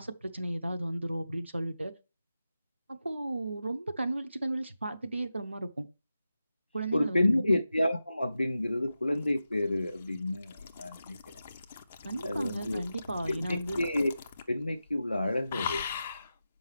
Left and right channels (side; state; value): both; inverted; correlation -0.91